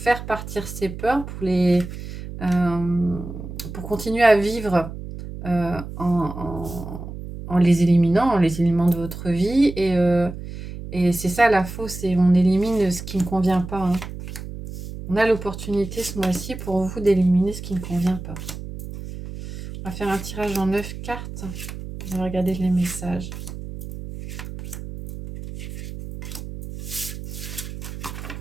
partir ces peurs, pour continuer à vivre en les éliminant de votre vie. Et c'est ça la fausse, c'est on élimine ce qui ne convient pas. Hein. On a l'opportunité ce mois-ci pour vous d'éliminer ce qui ne convient pas. On va faire un tirage en 9 cartes. On va regarder les messages.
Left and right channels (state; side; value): noise; right; hum, 10 dB below the sound